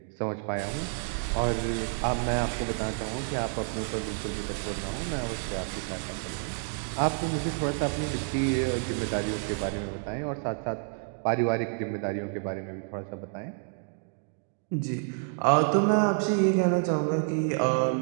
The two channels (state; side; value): silent; left; 58 dB below the other